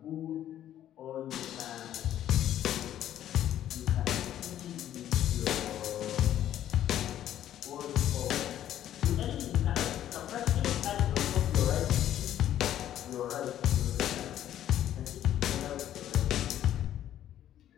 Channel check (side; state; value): right; quieter; 11.6 dB